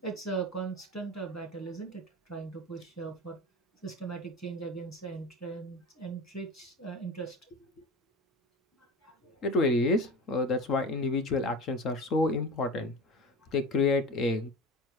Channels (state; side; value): normal; both; correlation 0.32